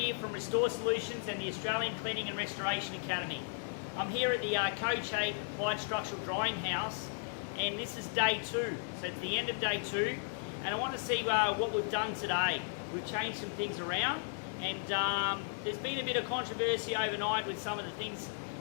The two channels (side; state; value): right; silent; digital silence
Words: from Restore Solutions and the Australian Cleaning and Restoration Academy. I'm here at the Coach 8 Applied Structural Drying House, and this is day 2. So it's the end of day 2, and I want to see what we've done today. We've changed some things around, and there's been a bit of controversy overnight with some of the things